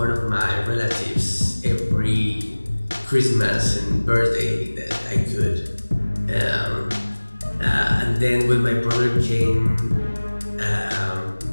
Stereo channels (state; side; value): inverted; both; correlation -1.00